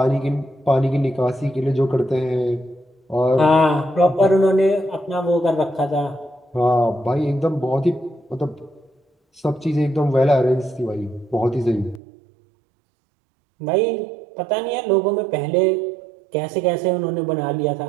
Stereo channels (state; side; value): drops out; left; at 12.0 s